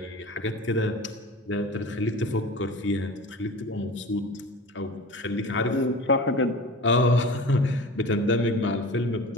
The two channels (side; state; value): both; normal; correlation 0.36